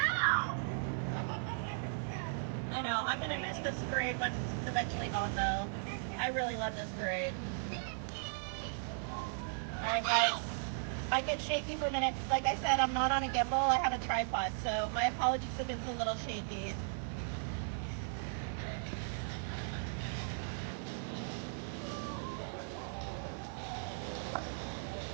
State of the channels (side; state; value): left; silent; 53 dB below the other